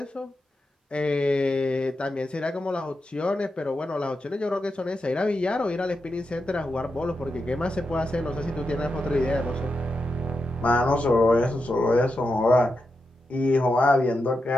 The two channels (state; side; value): normal; both; correlation 0.88